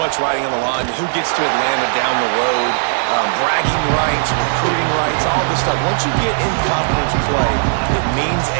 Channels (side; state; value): left; silent; 57 dB below the other